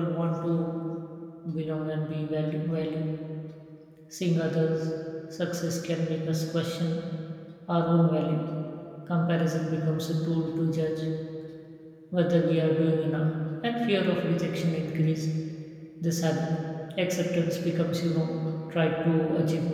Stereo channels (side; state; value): both; identical; correlation 1.00